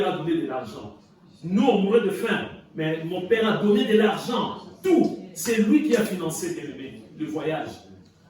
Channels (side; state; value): both; identical; correlation 1.00